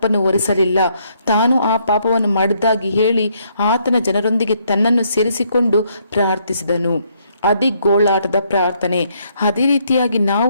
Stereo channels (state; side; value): inverted; both; correlation -0.71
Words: ಹೊರಿಸಲಿಲ್ಲ. ತಾನು ಆ ಪಾಪವನ್ನು ಮಾಡಿದ್ದಾಗಿ ಹೇಳಿ ಆತನ ಜನರೊಂದಿಗೆ ತನ್ನನ್ನು ಸೇರಿಸಿಕೊಂಡು ಪ್ರಾರ್ಥಿಸಿದನು. ಅದೇ ಗೋಳಾಟದ ಪ್ರಾರ್ಥನೆ. ಅದೇ ರೀತಿಯಾಗಿ